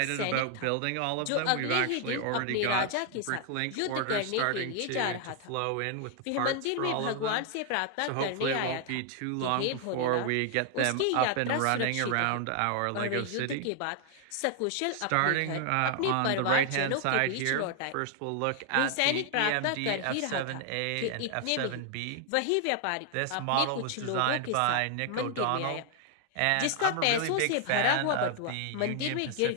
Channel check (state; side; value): different; both; correlation 0.00